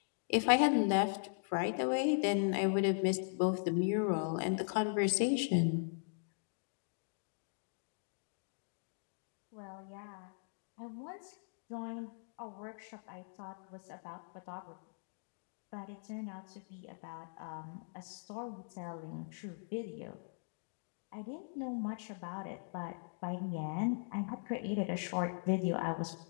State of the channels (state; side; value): silent; right; digital silence